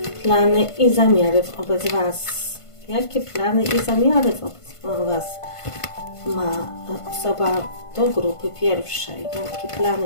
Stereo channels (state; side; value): late; right; 1.5 ms